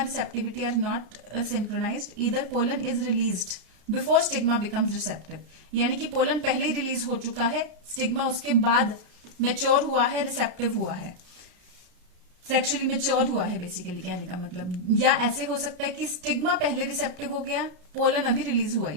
are not synchronized. Either pollen is released before stigma becomes receptive, यानी कि पोलन पहले ही रिलीज हो चुका है, स्टिग्मा उसके बाद मेच्योर हुआ है, रिसेप्टिव हुआ है, सेक्सुअली मेच्योर हुआ है बेसिकली कहने का मतलब। या ऐसे हो सकता है कि स्टिग्मा पहले रिसेप्टिव हो गया, पोलन अभी रिलीज हुआ ही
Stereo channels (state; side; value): late; left; 33 ms